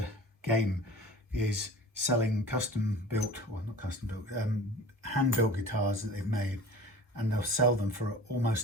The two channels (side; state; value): both; normal; correlation 0.41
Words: game is selling hand-built guitars that they've made, and they'll sell them for